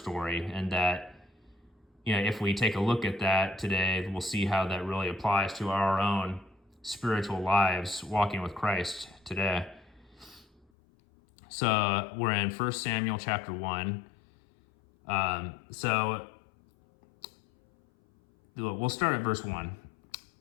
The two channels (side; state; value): right; drops out; at 10.7 s